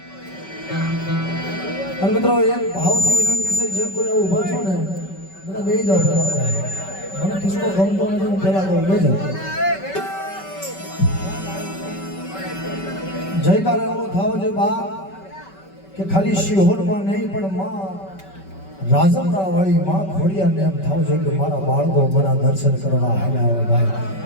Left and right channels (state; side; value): late; right; 5.2 ms